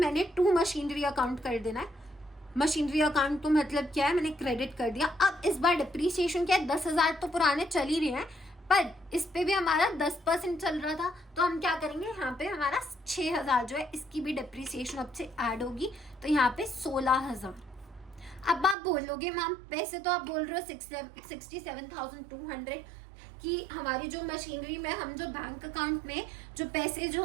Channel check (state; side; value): drops out; left; at 18.8 s